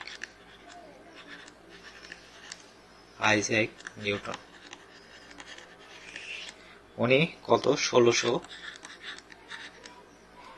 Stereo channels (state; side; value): identical; both; correlation 1.00